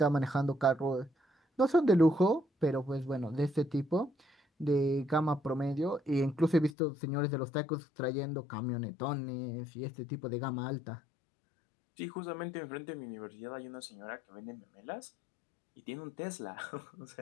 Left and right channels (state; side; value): drops out; right; at 6.8 s